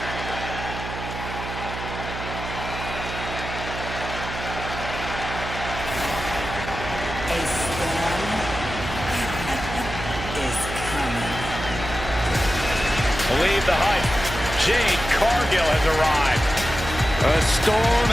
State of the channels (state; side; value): noise; right; hum, 7 dB below the sound